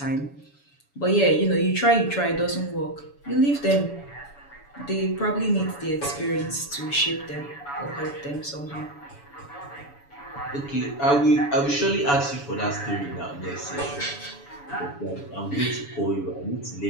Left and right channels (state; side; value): late; right; 7.0 ms